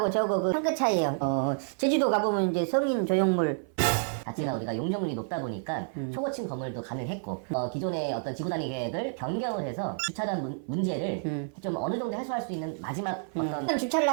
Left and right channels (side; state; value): left; silent; 56 dB below the other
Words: 저거 한 끗 차이에요. 제주도 가보면 이제 성인 조형물, 자체가 우리가 용적률이 높다 보니까 초고층 건물도 가능했고 기존의 어떤 지구 단위 계획을 변경을 해서 주차장 문제를 좀 어느 정도 해소할 수 있는 마지막 어떤 주차를